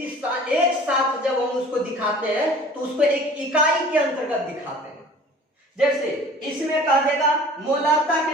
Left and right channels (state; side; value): normal; both; correlation 0.46